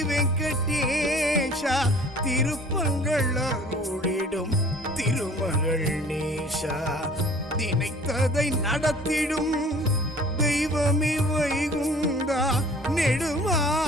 வெங்கடேஷா திருப்பங்கள் அருளிடும் திருமகள் நேஷா நினைத்ததை நடத்திடும் தெய்வமே வைகுந்தா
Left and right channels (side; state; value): both; normal; correlation 0.49